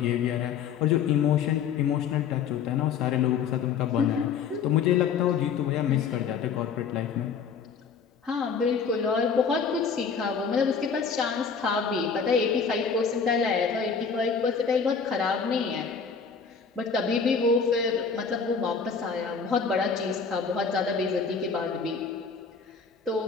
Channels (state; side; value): quieter; right; 6.1 dB